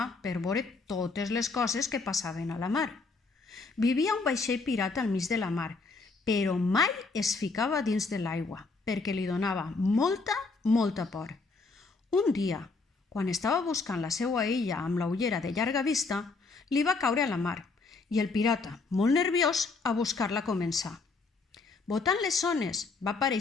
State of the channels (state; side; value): quieter; right; 4.1 dB